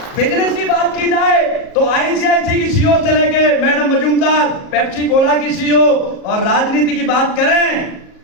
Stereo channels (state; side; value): late; right; 37 ms